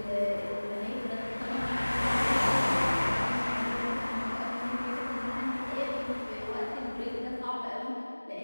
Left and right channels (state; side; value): inverted; both; correlation -1.00